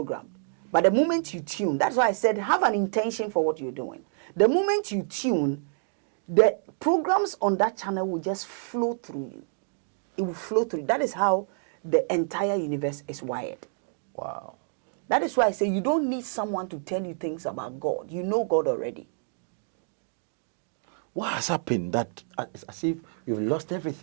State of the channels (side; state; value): left; silent; digital silence